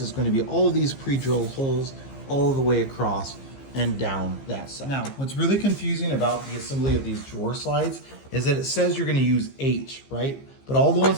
gonna be all of these pre-drilled holes all the way across and down that side. Now, what's really confusing about the assembly of these drawer slides is that it says you're gonna use H, right? But all the ones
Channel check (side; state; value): right; late; 15 ms